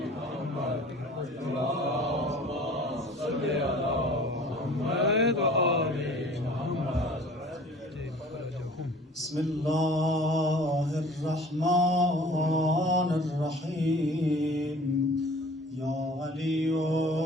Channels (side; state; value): both; normal; correlation 0.47